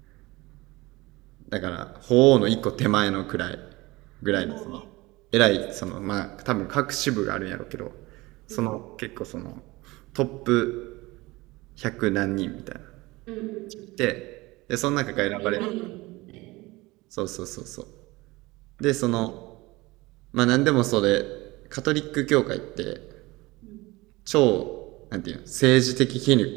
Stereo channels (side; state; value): left; quieter; 21.4 dB